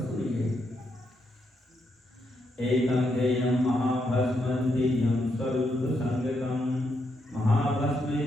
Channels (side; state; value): both; normal; correlation 0.80